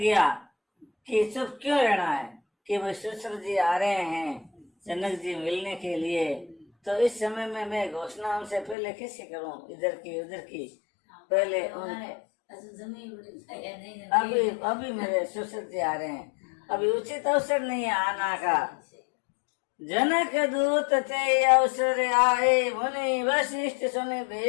कि चुप क्यों रहना है, कि भाई सुश्र जी आ रहे हैं जनक जी मिलने के लिए। तो इस समय में मैं घोषणा उनसे पहले कैसे करूं, इधर की उधर की। पहले अभी मेरे सुश्र जी आ रहे हैं, अभी उचित अवसर नहीं है आना का। जनक दूत ते अवसर आए, मुनि वशिष्ठ सुने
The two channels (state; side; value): drops out; right; at 8.8 s